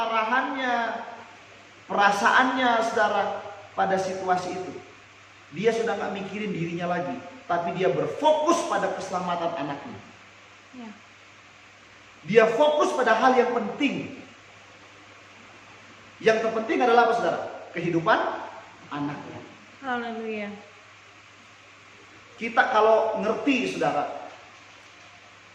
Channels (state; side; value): identical; both; correlation 1.00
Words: perasaannya, saudara, pada situasi itu. Dia sudah nggak mikirin dirinya lagi, tapi dia berfokus pada keselamatan anaknya. Ya. Dia fokus pada hal yang penting. Yang terpenting adalah apa, saudara? Kehidupan anaknya. Haleluya. Kita kalau ngerti, saudara,